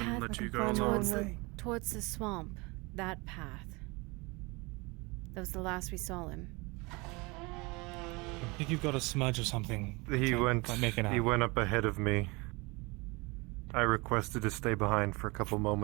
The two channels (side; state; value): left; quieter; 26.0 dB